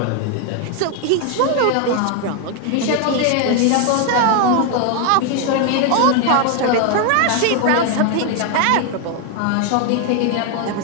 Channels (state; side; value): different; both; correlation 0.01